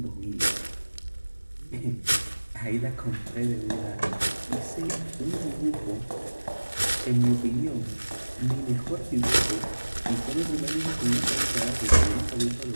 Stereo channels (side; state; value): both; inverted; correlation -1.00